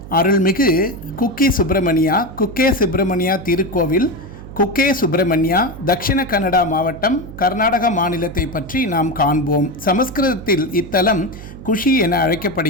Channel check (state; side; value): noise; right; hum, 14 dB below the sound